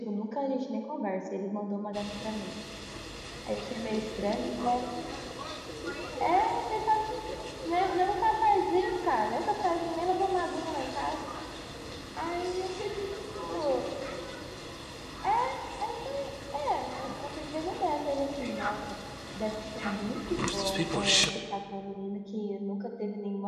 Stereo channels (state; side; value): identical; both; correlation 1.00